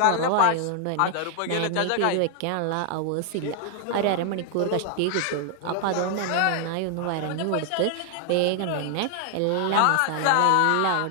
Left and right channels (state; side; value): different; both; correlation 0.00